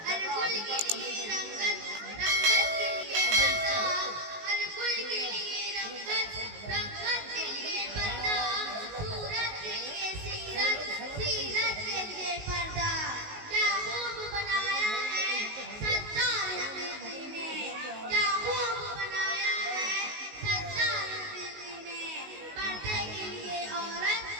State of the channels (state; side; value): late; left; 19 ms